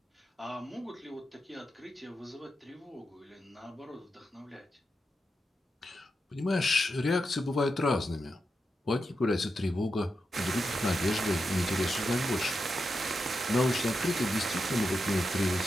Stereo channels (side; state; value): both; normal; correlation 0.87